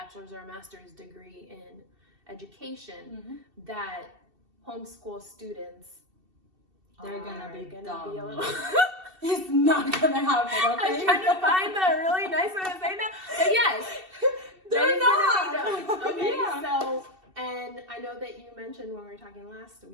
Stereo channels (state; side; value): late; left; 2.7 ms